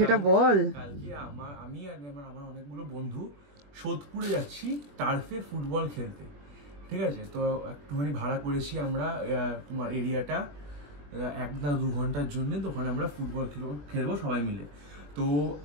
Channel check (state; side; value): late; left; 21 ms